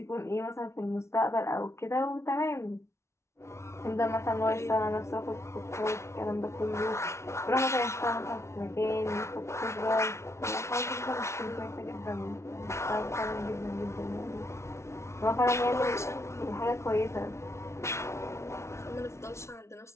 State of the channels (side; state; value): right; late; 0.13 ms